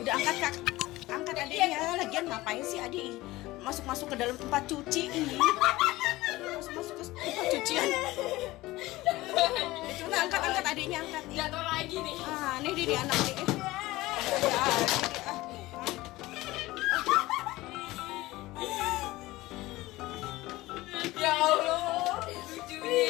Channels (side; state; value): right; quieter; 18.7 dB